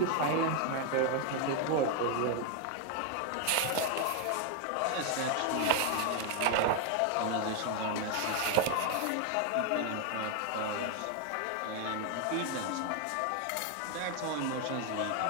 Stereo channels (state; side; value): different; both; correlation 0.01